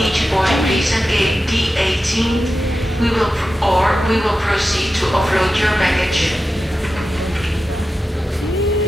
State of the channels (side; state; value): both; normal; correlation 0.92